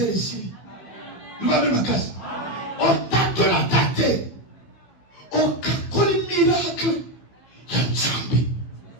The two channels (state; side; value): late; right; 16 ms